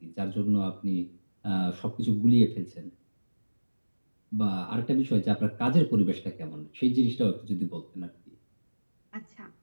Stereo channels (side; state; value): both; inverted; correlation -1.00